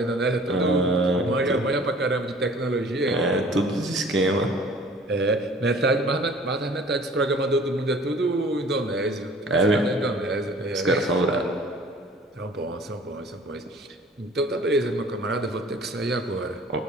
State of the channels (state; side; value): normal; both; correlation 0.50